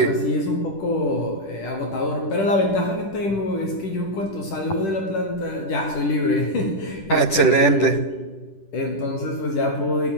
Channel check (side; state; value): right; late; 10 ms